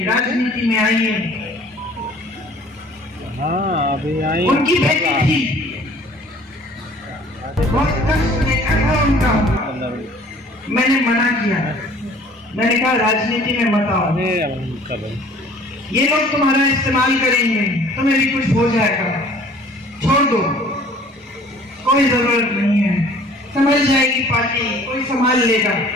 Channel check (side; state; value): both; normal; correlation 0.52